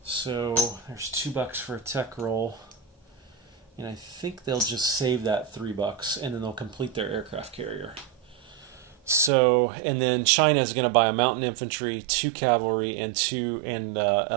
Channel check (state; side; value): drops out; left; at 9.3 s